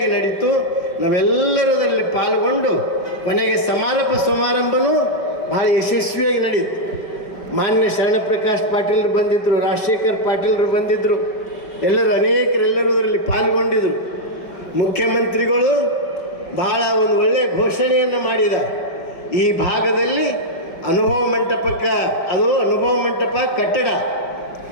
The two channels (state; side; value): late; right; 5.2 ms